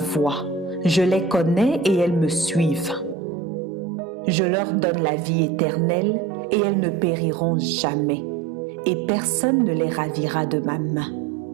je les connais et elles me suivent. Je leur donne la vie éternelle et elles ne périront jamais, et personne ne les ravira de ma main.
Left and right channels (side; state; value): left; drops out; at 3.2 s